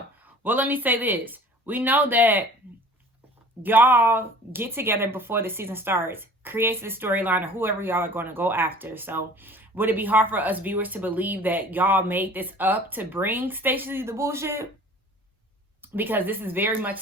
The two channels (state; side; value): normal; both; correlation 0.46